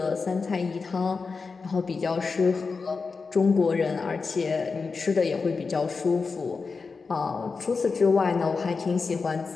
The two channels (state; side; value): quieter; right; 4.6 dB